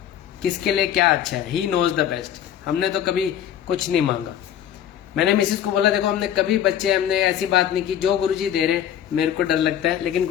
किसके लिए क्या अच्छा है। He knows the best. हमने तो कभी कुछ नहीं मांगा। मैंने मिसेज को बोला देखो हमने कभी हमने ऐसी बात नहीं की, जो गुरुजी दे रहे मेरे को डर लगता है, लेकिन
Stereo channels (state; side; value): quieter; right; 10.2 dB